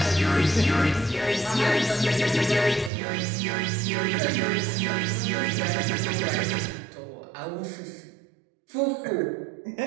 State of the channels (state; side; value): drops out; left; at 2.9 s